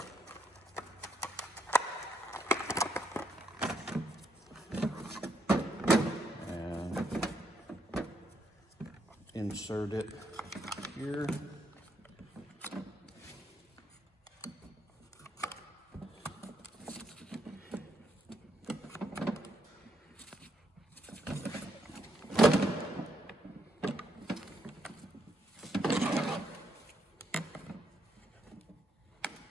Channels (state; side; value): normal; both; correlation 0.75